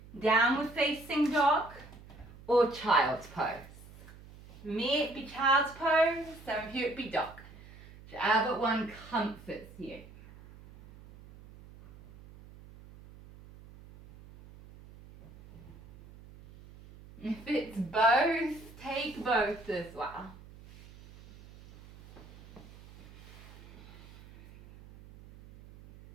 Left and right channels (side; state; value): right; noise; hum, 19 dB below the sound